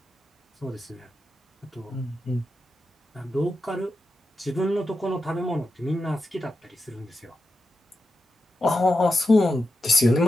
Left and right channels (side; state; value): both; normal; correlation 0.89